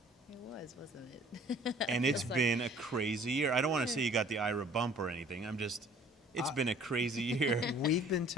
it was, wasn't it? And it's been a crazy year. I don't want to say you got the Ira bump or anything. It's been a crazy year. We've been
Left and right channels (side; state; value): both; normal; correlation 0.53